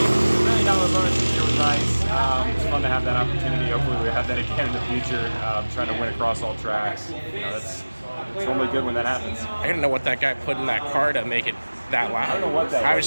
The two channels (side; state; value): both; inverted; correlation -1.00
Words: $1 million bonus this year was nice. It's fun to have that opportunity. Hopefully we have that again in the future, trying to win across all tracks. It's normally good when that happens. I didn't know what that guy put in that car to make it that loud. I don't know what that was. I was